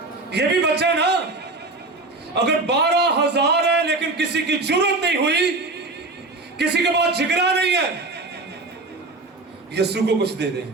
ये भी बच्चा ना, अगर 12,000 है लेकिन किसी की जरूरत नहीं हुई, किसी के पास जिगरा नहीं है, यीशु को कुछ दे दें।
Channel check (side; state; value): left; quieter; 3.3 dB